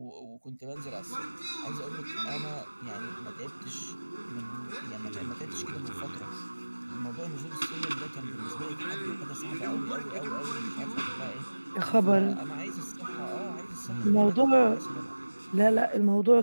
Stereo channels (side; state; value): both; inverted; correlation -1.00